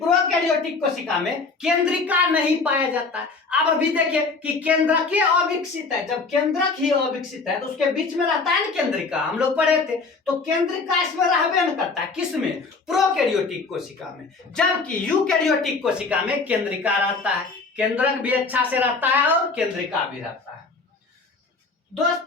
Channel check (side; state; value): right; quieter; 4.2 dB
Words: कोशिका में केंद्रिका नहीं पाया जाता है। अब अभी देखिए कि केंद्रक ही अविकसित है। जब केंद्रक ही अविकसित है तो उसके बीच में रहता है ना केंद्रिका, हम लोग पढ़े थे। तो केंद्रिका इसमें रहबे न करता है, किसमें? प्रोकैरियोटिक कोशिका में। जबकि यूकैरियोटिक कोशिका में केंद्रिका रहता है, केंद्रक भी अच्छा से रहता है और केंद्रिका भी रहता है।